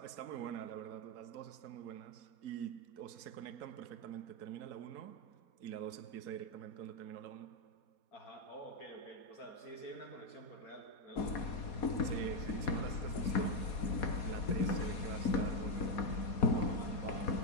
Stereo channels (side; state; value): right; late; 4.2 ms